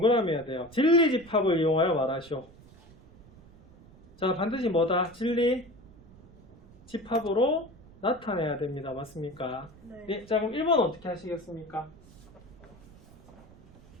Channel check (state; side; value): noise; right; rumble, 23 dB below the sound